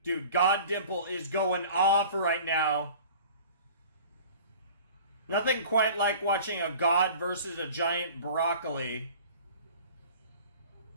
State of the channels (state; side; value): inverted; both; correlation -0.44